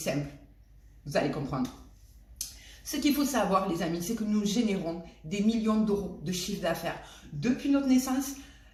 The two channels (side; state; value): both; identical; correlation 1.00